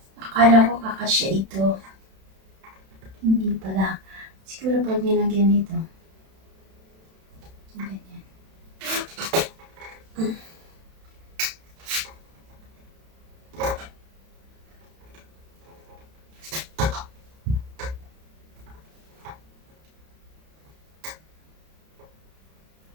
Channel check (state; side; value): late; left; 31 ms